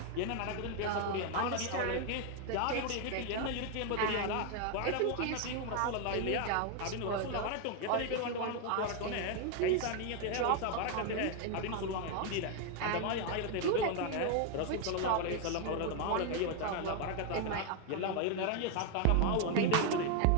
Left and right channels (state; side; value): different; both; correlation 0.01